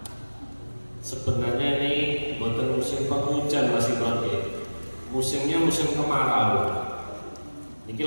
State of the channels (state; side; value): inverted; both; correlation -1.00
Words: sebenarnya ini boten musim penghujan Mas Imron nggih. Musimnya musim kemarau. Niki